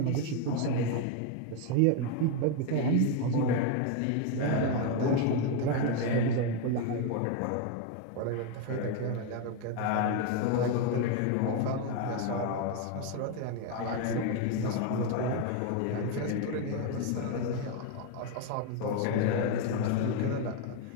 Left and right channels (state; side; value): different; both; correlation 0.01